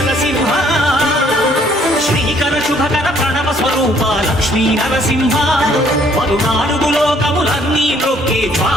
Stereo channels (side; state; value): both; normal; correlation 0.63